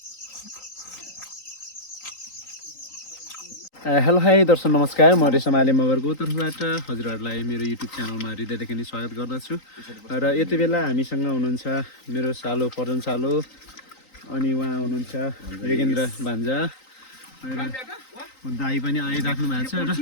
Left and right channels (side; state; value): right; late; 3.9 ms